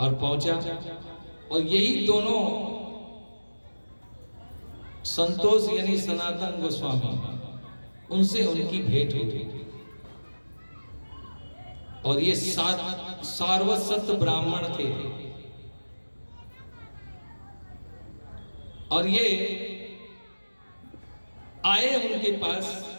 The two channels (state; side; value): inverted; both; correlation -1.00